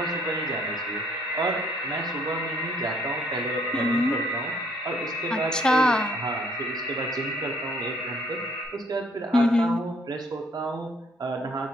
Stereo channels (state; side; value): normal; both; correlation 0.63